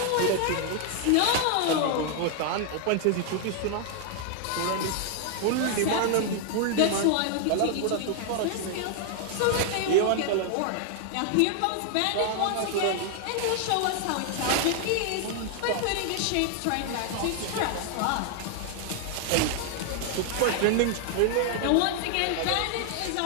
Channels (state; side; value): different; both; correlation 0.00